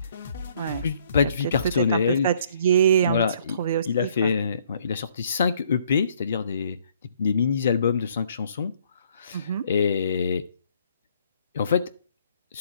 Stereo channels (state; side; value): inverted; both; correlation -0.63